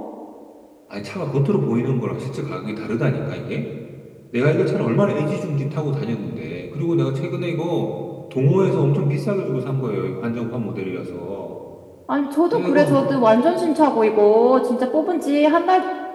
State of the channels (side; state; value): both; identical; correlation 1.00